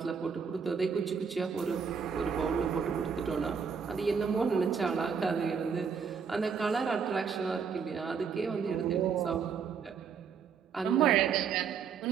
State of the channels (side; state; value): left; quieter; 6.4 dB